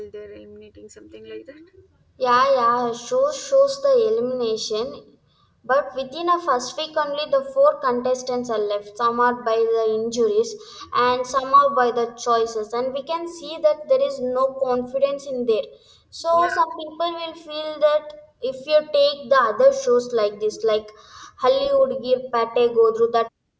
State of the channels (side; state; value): both; identical; correlation 1.00